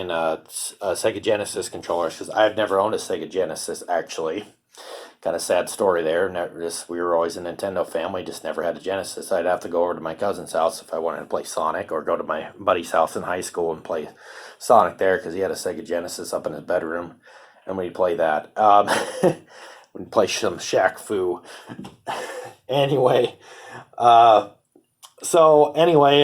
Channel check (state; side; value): identical; both; correlation 1.00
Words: Sega Genesis controllers because I've never owned a Sega Genesis actually. Kind of sad story there. We were always a Nintendo family, just never had a Genesis. I'd have to go over to my cousin's house if I wanted to play Sonic, or go to my buddy's house in high school and play Sonic there because he had a Sega Genesis up in his bedroom, and we'd play that. We'd play some Shaq Fu. Anyway,